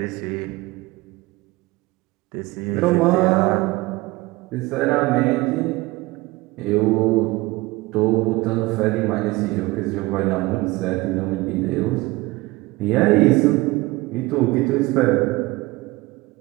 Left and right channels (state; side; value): quieter; left; 21.2 dB